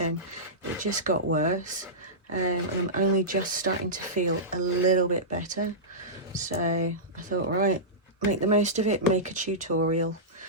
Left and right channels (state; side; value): normal; both; correlation -0.15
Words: it just got worse. And I'm only just starting to feel a little bit better. So I thought, right, make the most of it, make a tutorial.